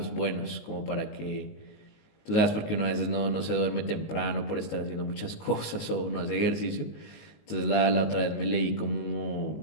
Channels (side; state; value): right; late; 19 ms